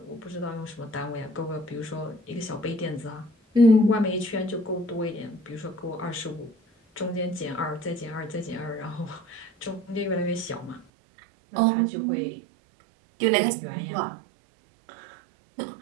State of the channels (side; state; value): left; drops out; at 10.9 s